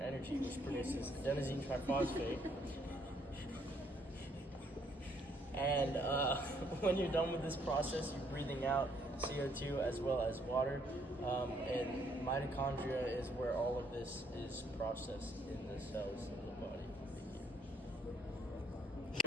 which produces adenosine triphosphate. And when you're done with this process, you're breathing out CO2 as well as water, and mitochondria is where all of this is processed in the cells of the body.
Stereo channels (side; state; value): both; normal; correlation 0.69